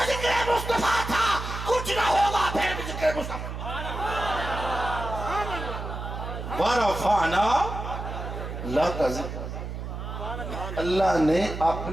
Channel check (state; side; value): noise; right; hum, 7 dB below the sound